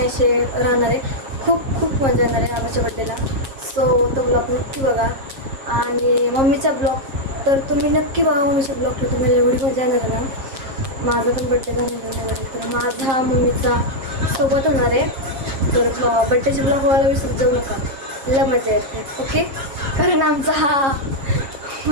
असे राहणार आहे. खूप खूप मजा येणार आहे आबाच्या बड्डेला. सो तो ब्लॉग नक्की बघा. आणि मम्मीचा ब्लॉग तर तुम्ही नक्की बघा. मम्मीच्या ब्लॉगला तुम्हाला एवढी मजा येणार आहे ना. माझा पण बड्डे झालेला आहे. तर माझा मम्मीचा सोबत होणार आहे. तर बड्डेचे ब्लॉग व्हायला विसरत जाऊ नका. लय मजा येते. ओके. कारण आमचा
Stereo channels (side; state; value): left; late; 7.5 ms